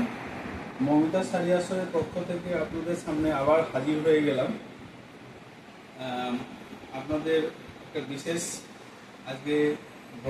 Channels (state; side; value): identical; both; correlation 1.00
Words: মমিতা শাড়ি আসরের পক্ষ থেকে আপনাদের সামনে আবার হাজির হয়ে গেলাম। আপনাদের একটা বিশেষ আজকে